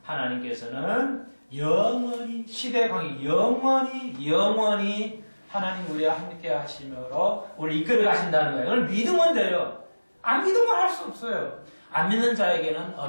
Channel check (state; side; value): inverted; both; correlation -1.00